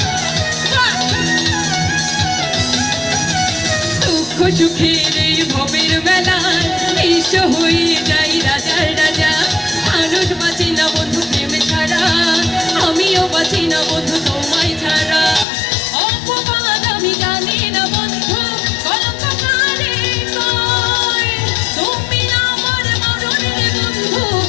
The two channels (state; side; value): drops out; right; at 15.5 s